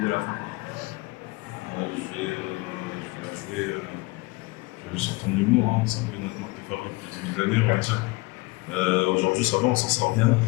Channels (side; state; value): right; quieter; 23.7 dB